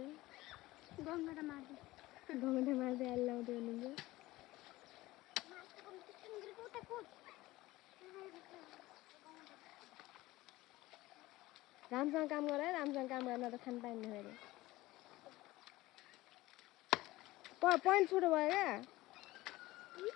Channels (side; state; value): right; quieter; 18.4 dB